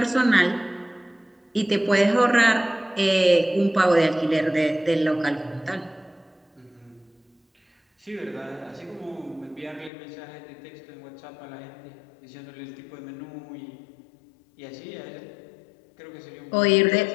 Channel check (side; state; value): right; drops out; at 9.9 s